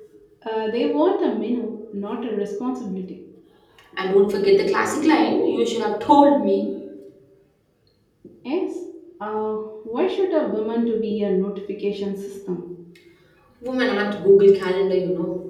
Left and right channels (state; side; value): identical; both; correlation 1.00